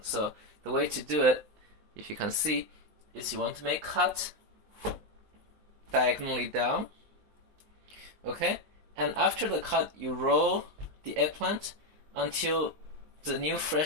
So the way to do it, if you can see, is you want to make cut diagonally down. Okay? And after the cut, you roll the eggplant until the new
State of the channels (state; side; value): late; left; 19 ms